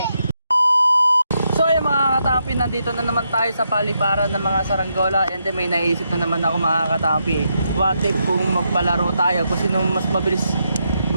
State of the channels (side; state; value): both; inverted; correlation -0.81